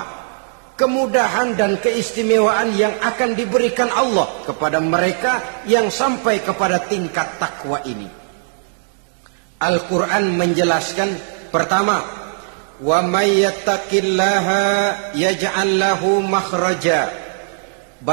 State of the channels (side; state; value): left; silent; digital silence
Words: kemudahan dan keistimewaan yang akan diberikan Allah kepada mereka yang sampai kepada tingkat takwa ini? Al-Quran menjelaskan, pertama, wa may yattaqillaha yaj'al lahu makhraja.